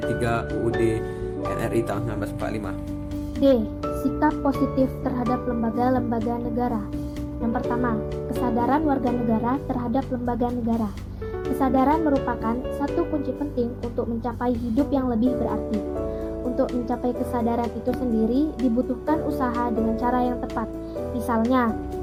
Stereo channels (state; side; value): identical; both; correlation 1.00